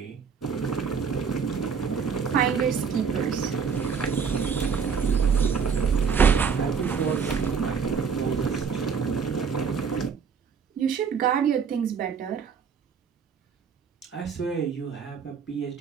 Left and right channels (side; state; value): left; quieter; 6.3 dB